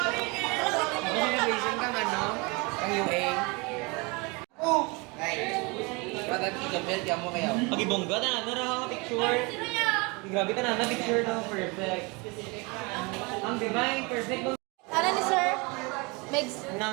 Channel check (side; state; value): left; quieter; 28.1 dB